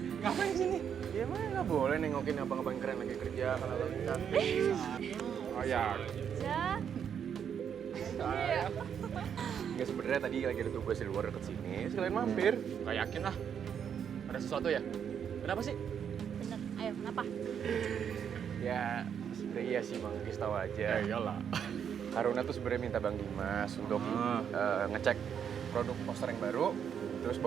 Ngapain sini? Ya emang nggak boleh nengokin abang-abang keren lagi kerja kalau lagi cantik. Oh ya. Ya. Saya. Ya sebenarnya tadi lagi ada tugas di luar deket sini. Sekalian mampir. Nggak yakin lah. Ada sesuatu ya? Kenapa sih? Bener. Ayo, kenapa? Ya sebenarnya iya sih Bang Gis tahu aja. Ya iyalah. Haruna tuh sebenarnya minta Bang Dimas untuk ngecek produk poster yang baru, terus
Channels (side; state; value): left; quieter; 8.1 dB